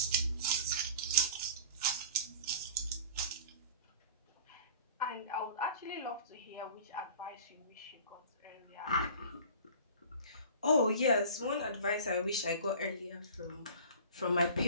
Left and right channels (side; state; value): both; inverted; correlation -0.41